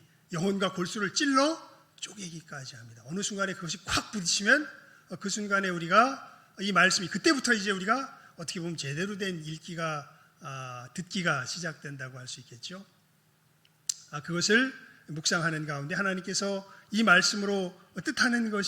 영혼과 골수를 찔러 쪼개기까지 합니다. 어느 순간에 그것이 콱 부딪히면 그 순간에 우리가 이 말씀이 그때부터 이제 우리가 어떻게 보면 제대로 된 듣기가 시작된다고 할 수 있겠죠. 그것을 묵상하는 가운데 하나님께서 이 말씀으로 뜻하는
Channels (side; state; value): both; identical; correlation 1.00